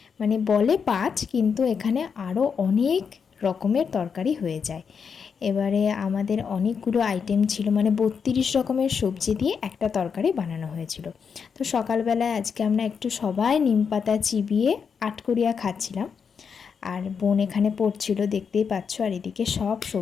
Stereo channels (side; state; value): right; quieter; 6.3 dB